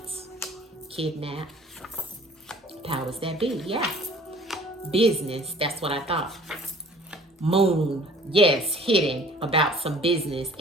Kidnap. Powers that be, yeah. Business, that's what I thought. Moon, yes, hidden about some business,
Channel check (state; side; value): normal; both; correlation 0.51